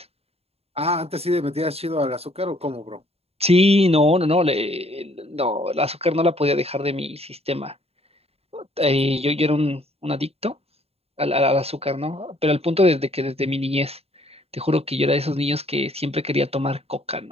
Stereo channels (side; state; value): left; late; 0.29 ms